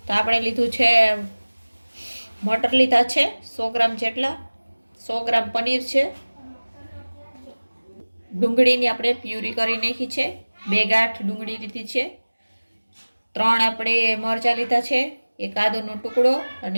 તો આપણે લીધું છે મટર લીધા છે 100 ગ્રામ જેટલા, 100 ગ્રામ પનીર છે, ડુંગળીની આપણે પ્યુરી કરી નાખી છે, 2 ગાંઠ ડુંગળી લીધી છે, 3 આપણે મરચાં લીધા છે, 1 આદુનો ટુકડો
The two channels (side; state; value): both; inverted; correlation -1.00